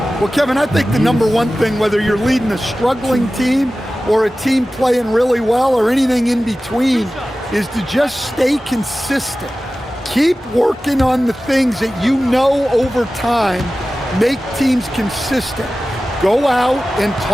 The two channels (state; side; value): normal; both; correlation 0.96